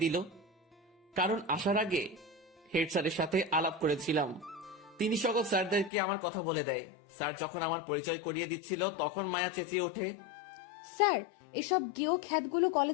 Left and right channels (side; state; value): right; drops out; at 5.9 s